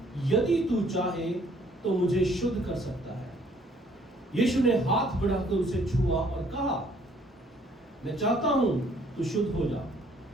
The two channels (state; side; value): normal; both; correlation 0.62